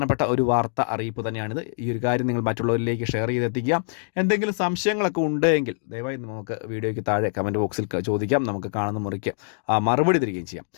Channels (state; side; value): silent; right; digital silence